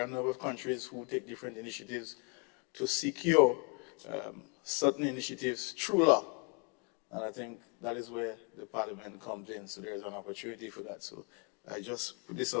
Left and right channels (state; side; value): quieter; right; 34.2 dB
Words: are a number of countries who take different initiatives to secure certain initiatives through law. And I think that is where the parliament comes in. So there's an opportunity for that. So I just put this